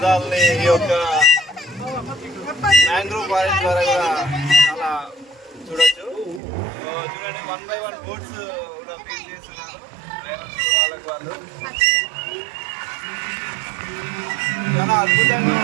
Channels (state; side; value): drops out; left; at 6.4 s